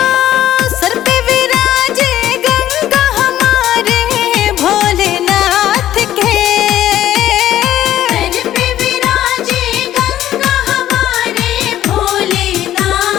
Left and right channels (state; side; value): quieter; right; 12.6 dB